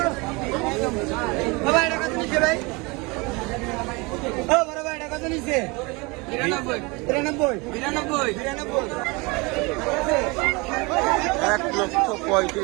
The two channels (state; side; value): quieter; left; 26.4 dB